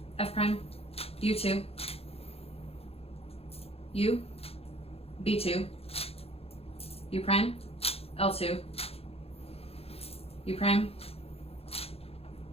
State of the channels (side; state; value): right; late; 0.29 ms